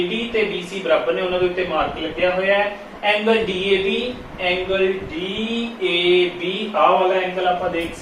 ਤੇ BC ਬਰਾਬਰ ਨੇ, ਉਹਨਾਂ ਦੇ ਉੱਤੇ ਮਾਰਕ ਲੱਗਿਆ ਹੋਇਆ ਹੈ। ਐਂਗਲ DAB ਆ ਵਾਲਾ ਐਂਗਲ ਆਪਾਂ ਦੇਖ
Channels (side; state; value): both; identical; correlation 1.00